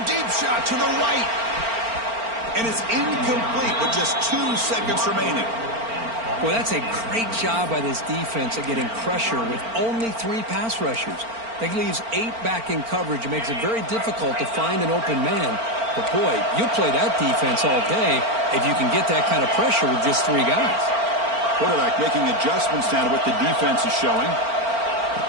deep shot to the right. And it's incomplete with just 2 seconds remaining. Well, that's a great job by this defense at getting pressure with only 3 pass rushers. That leaves 8 back in coverage. It makes it very difficult to find an open man. But, boy, you play that defense all day if you can get that kind of pressure with just 3 guys. Quarterback making adjustments now to what the defense is showing.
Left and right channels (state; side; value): late; left; 4.4 ms